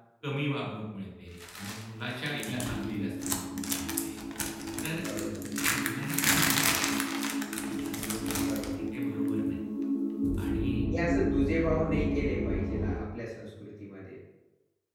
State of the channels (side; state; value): both; identical; correlation 1.00